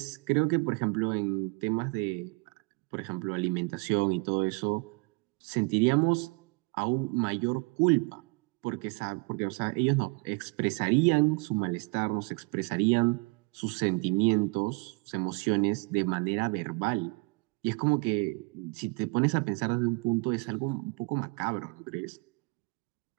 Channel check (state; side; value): quieter; left; 30.2 dB